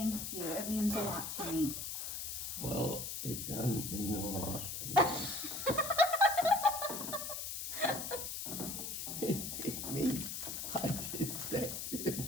you. It means a lot to me. Well, it doesn't mean a lot to me. It means I just think to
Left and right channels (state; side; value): noise; left; hiss, 4 dB below the sound